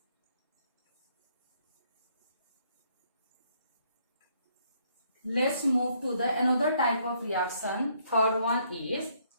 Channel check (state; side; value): inverted; both; correlation -0.68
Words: Let's move to the another type of reaction. Third one is